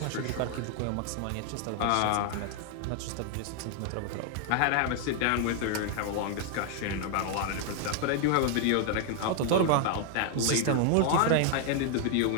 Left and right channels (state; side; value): different; both; correlation 0.00